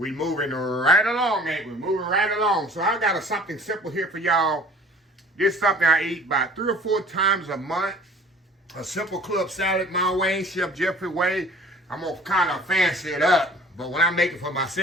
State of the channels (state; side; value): normal; both; correlation 0.49